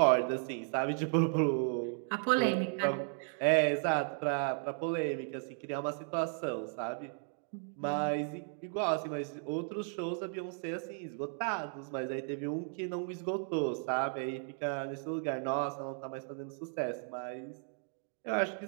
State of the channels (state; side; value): silent; left; 54 dB below the other